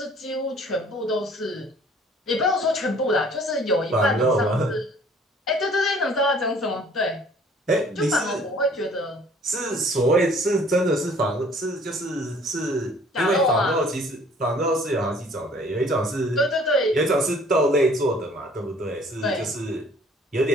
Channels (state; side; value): normal; both; correlation 0.55